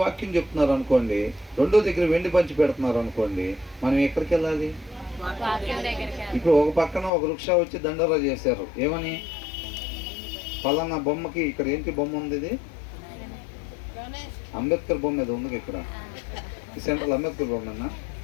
వాక్యం చెప్తున్నారు అనుకోండి, రెండో దగ్గర వెండి పంచి పెడుతున్నారు అనుకోండి, మనం ఎక్కడికి వెళ్ళాలి? ఇప్పుడు ఒక పక్కన ఒక వృక్ష వచ్చి దండోరా చేశారు. ఏమని? పలానా బొమ్మకి ఇక్కడ ఏంటి బొమ్మ ఉంది? ఇది అంబేద్కర్ బొమ్మ ఏదో ఉంది ఇక్కడ, ఈ సెంట్రల్ అంబేద్కర్ బొమ్మనా?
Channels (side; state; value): right; drops out; at 7.1 s